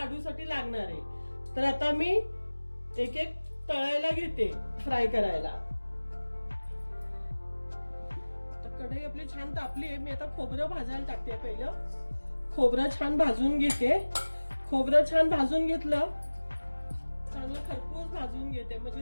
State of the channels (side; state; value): both; inverted; correlation -1.00